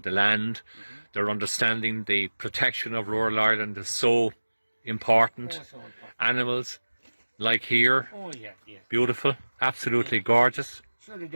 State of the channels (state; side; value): inverted; both; correlation -1.00